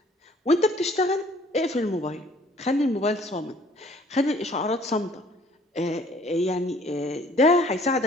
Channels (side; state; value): both; normal; correlation 0.57